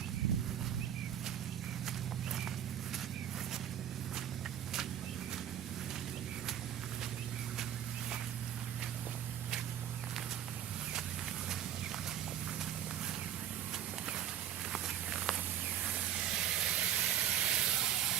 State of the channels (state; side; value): quieter; left; 10.3 dB